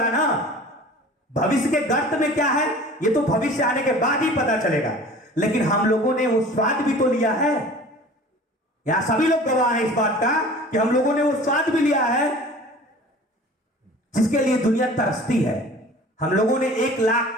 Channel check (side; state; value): both; normal; correlation 0.44